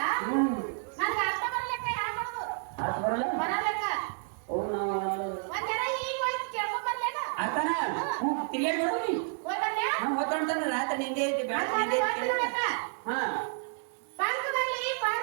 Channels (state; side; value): silent; left; 55 dB below the other